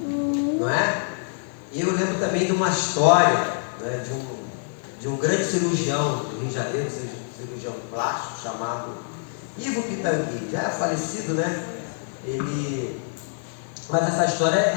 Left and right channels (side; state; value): right; silent; digital silence